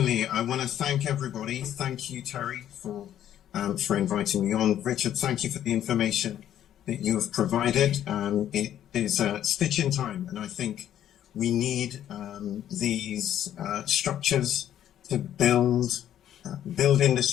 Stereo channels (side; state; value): right; quieter; 11.0 dB